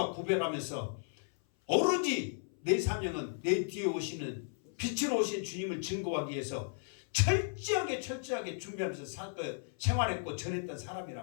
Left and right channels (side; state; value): right; silent; 55 dB below the other